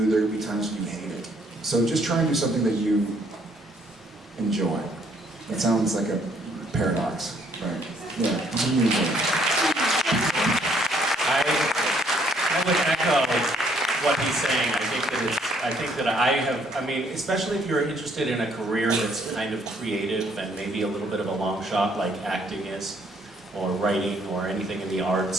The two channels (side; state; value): both; normal; correlation 0.66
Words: there will be times when you hate it. So just try and do something that you enjoy. That sounds like a paradox, right? Yeah, you enjoy it. I would echo what he's saying. I think that I mean, especially if you're interested in a career that's kind of creative and maybe a little bit of a long shot like acting is, or writing or anything in the